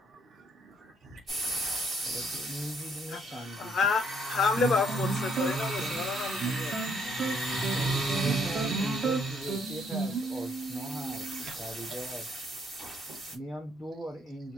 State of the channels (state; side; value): normal; both; correlation 0.68